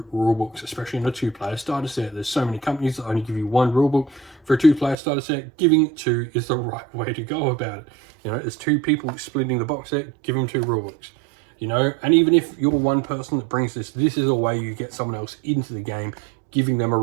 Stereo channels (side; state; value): left; drops out; at 5.0 s